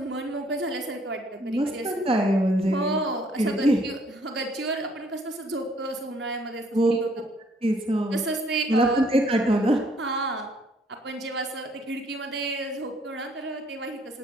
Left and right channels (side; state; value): both; normal; correlation 0.64